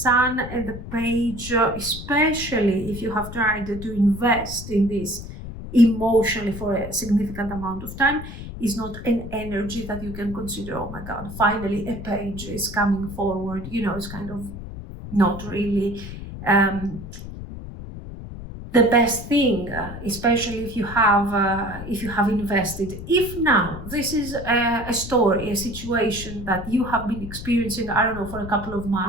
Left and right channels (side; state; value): left; noise; rumble, 10 dB below the sound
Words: and the Page, especially if you have tried to invest in this emotionally for a significant amount of time, is not an energy that you can consider, oh my God, finally a page is coming forward. It's kind of not really the best thing, especially if you have invested. If now this is a story, a situation that you have been experiencing, I don't know, for a couple of